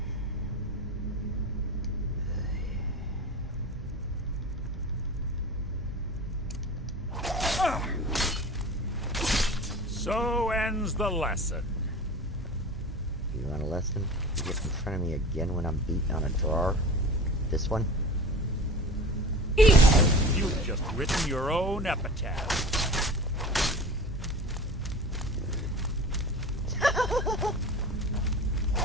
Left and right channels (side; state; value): both; normal; correlation 0.36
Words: So ends the lesson. You want a lesson? You get in front of me again when I'm beating on a drawer? This one? You've just written your own epitaph.